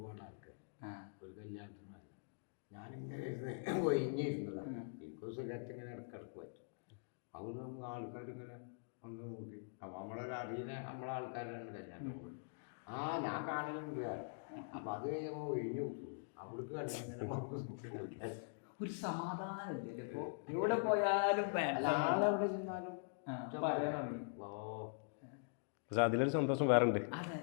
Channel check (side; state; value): right; silent; digital silence